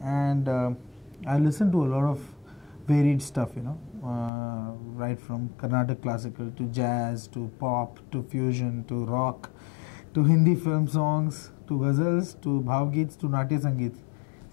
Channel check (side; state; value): right; drops out; at 4.3 s